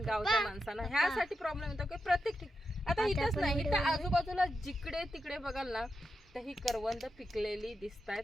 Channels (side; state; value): both; normal; correlation 0.87